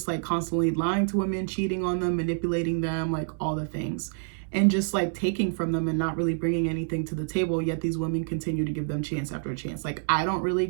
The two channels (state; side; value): silent; left; 60 dB below the other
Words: like constantly lying to women, cheating on them, manipulating them, like all the things, and just like taking from them and not really bringing anything to the table, yet these women continue to give them chance after chance. Like, I don't really